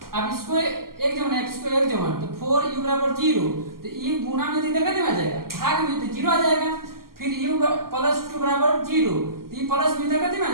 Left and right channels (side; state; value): left; late; 0.92 ms